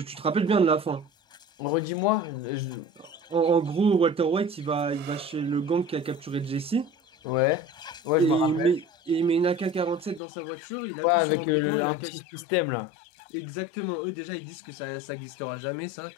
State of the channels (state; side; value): drops out; right; at 10.2 s